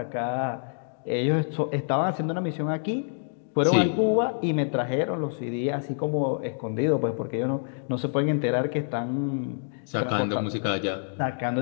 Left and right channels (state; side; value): silent; right; digital silence